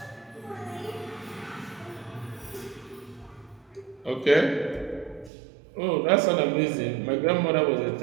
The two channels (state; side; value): drops out; left; at 5.3 s